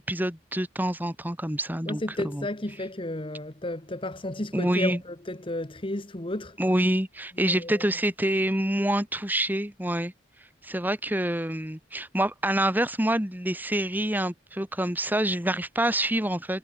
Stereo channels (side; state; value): both; normal; correlation 0.71